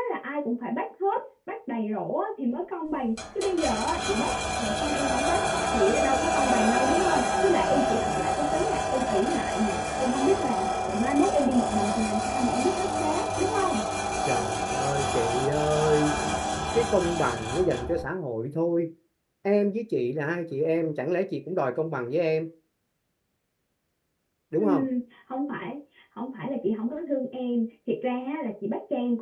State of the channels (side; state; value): both; identical; correlation 1.00